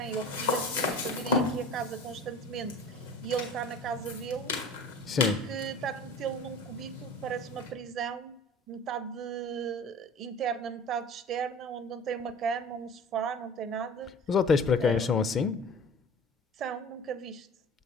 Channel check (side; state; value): both; normal; correlation 0.40